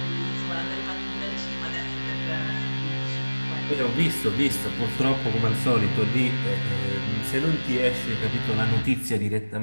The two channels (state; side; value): inverted; both; correlation -1.00